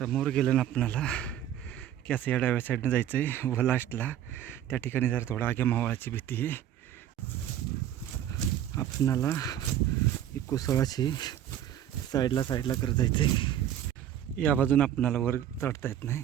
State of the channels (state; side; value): quieter; left; 10.9 dB